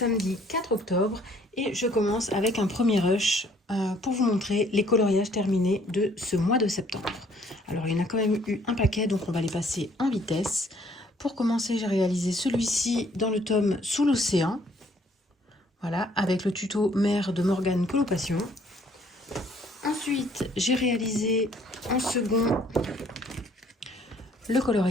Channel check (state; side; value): normal; both; correlation 0.61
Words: 4 octobre et je commence avec un premier rush pour vous montrer les coloriages terminés de ce mois de septembre. Alors il y en a quand même eu un paquet, donc on va les passer en vitesse. Pour commencer, j'ai réalisé celui-ci dans le tome Sous l'océan. Voilà, avec le tuto Mer de Morgane Colocation. Ensuite, j'ai réalisé en second le